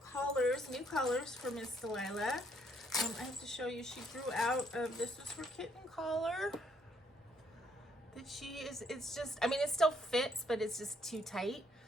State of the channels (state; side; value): normal; both; correlation 0.69